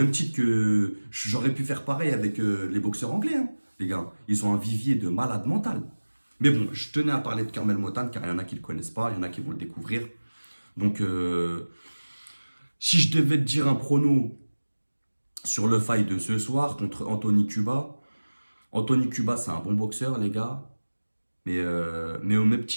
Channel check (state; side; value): inverted; both; correlation -1.00